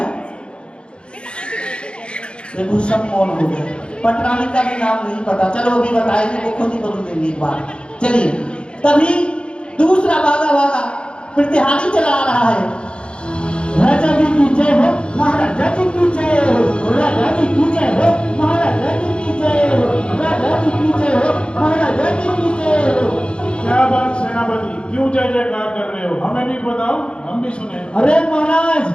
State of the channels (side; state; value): right; late; 0.056 ms